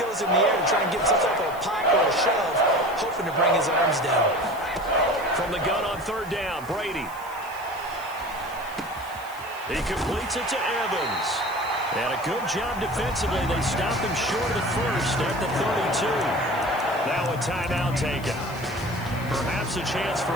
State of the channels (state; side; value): noise; left; hiss, 20 dB below the sound